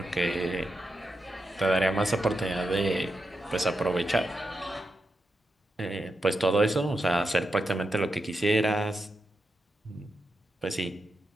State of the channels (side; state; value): both; normal; correlation 0.87